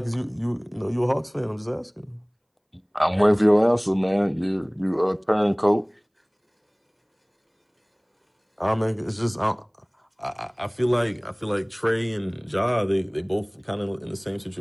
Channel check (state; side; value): identical; both; correlation 1.00